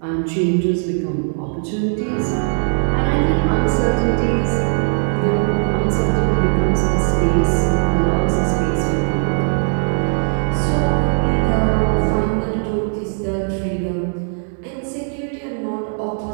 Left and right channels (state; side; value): silent; left; 67 dB below the other